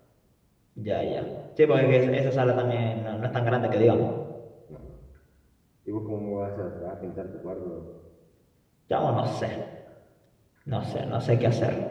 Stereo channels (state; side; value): identical; both; correlation 1.00